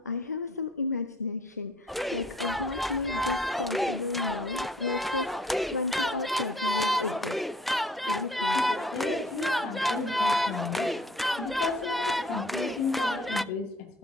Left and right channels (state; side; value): normal; both; correlation 0.55